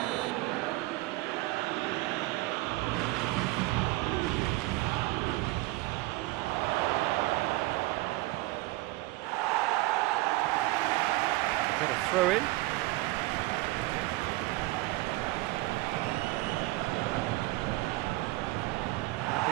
Get a throw in.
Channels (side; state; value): left; quieter; 20.3 dB